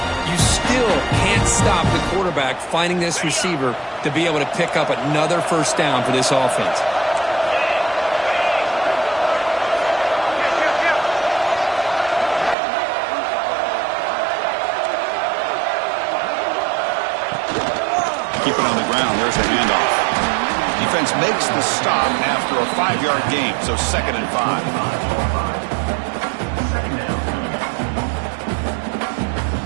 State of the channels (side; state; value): left; drops out; at 12.6 s